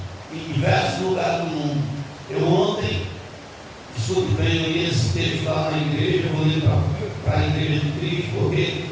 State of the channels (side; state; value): both; identical; correlation 1.00